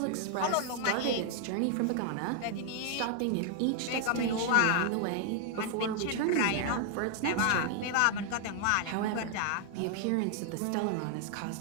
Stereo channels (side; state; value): both; different; correlation 0.00